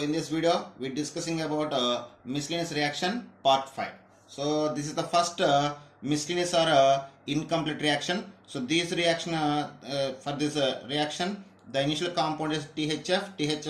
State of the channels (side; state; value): both; identical; correlation 1.00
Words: this video, we're discussing about miscellaneous reaction part 5. So this is the first miscellaneous or incomplete reaction. So this reaction, for this reaction, the initial compound is THF.